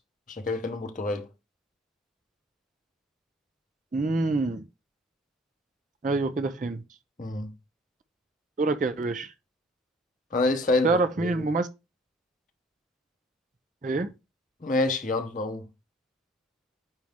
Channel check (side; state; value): both; normal; correlation 0.55